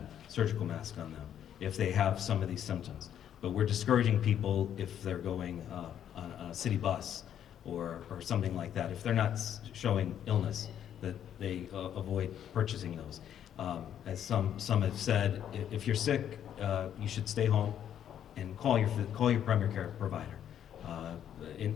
surgical mask on them, if they have some of these symptoms. But we're discouraging people if they're going on a city bus or something like that. If they're not showing illness, that they avoid purchasing those. As some have said, if you're sick, you should stay home and call your primary care provider.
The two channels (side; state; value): right; quieter; 9.8 dB